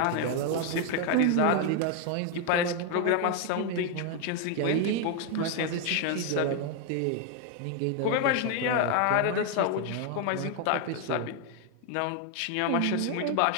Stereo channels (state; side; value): different; both; correlation 0.01